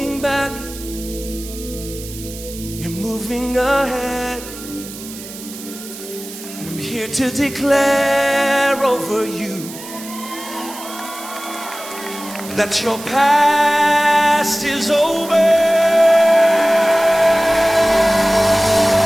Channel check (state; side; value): noise; right; hiss, 14 dB below the sound